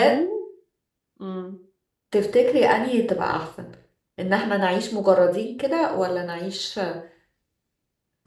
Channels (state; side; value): identical; both; correlation 1.00